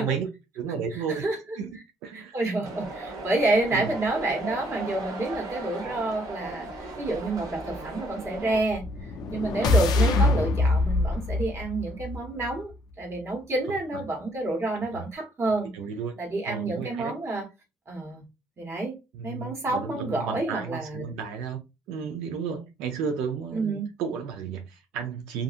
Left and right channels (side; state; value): both; normal; correlation 0.65